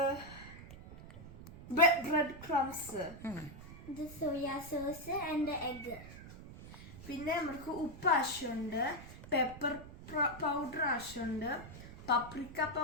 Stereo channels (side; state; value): right; noise; rumble, 15 dB below the sound